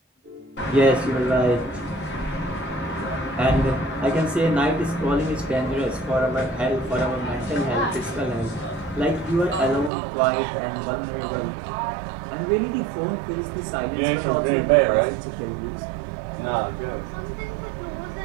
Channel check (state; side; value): drops out; left; at 9.9 s